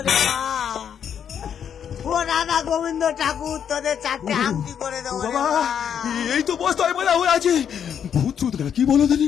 মা। ও রাধা গোবিন্দ ঠাকুর, তোদের 4টে আংটি করে দেবো রে বাবা, মা। এই তো বস্তায় বলা হয়ে আছে। ভূত চুত কি বলো দিনি?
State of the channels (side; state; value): right; quieter; 8.4 dB